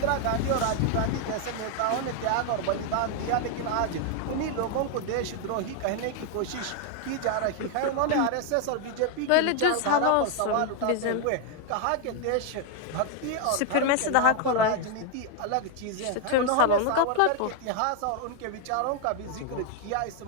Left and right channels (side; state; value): both; different; correlation 0.00